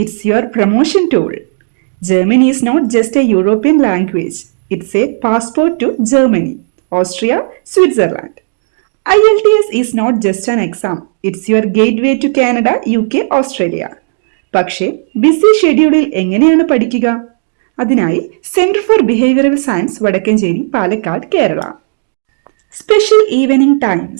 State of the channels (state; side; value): silent; left; digital silence